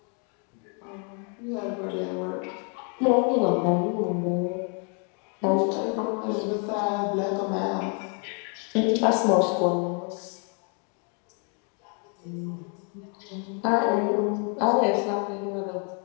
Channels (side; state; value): right; quieter; 38.7 dB